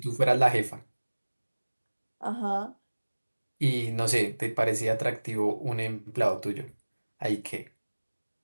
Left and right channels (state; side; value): inverted; both; correlation -1.00